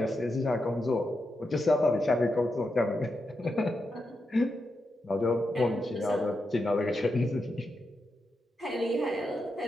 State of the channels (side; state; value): both; normal; correlation 0.86